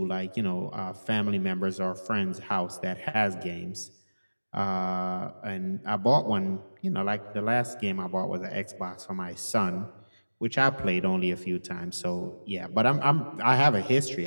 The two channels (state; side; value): inverted; both; correlation -1.00